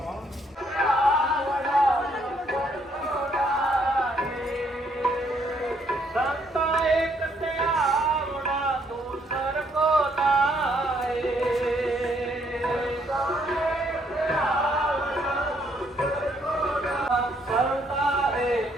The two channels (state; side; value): normal; both; correlation 0.69